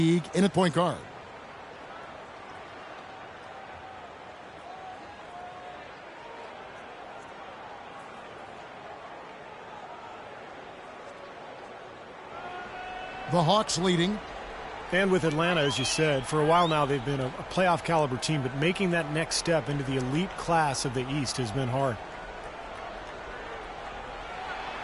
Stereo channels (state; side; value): identical; both; correlation 1.00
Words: in at point guard. The Hawks leading. And with Atlanta, as you said, for a while now they've been a playoff caliber team, but making that next step into the elite class of the East has been hard.